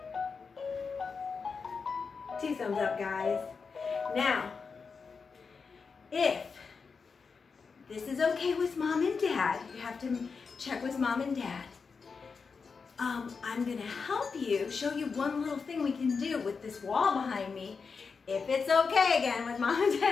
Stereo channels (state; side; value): quieter; right; 5.2 dB